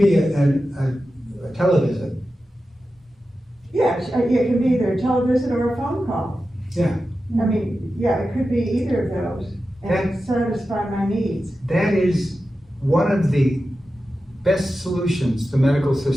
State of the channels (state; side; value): normal; both; correlation 0.92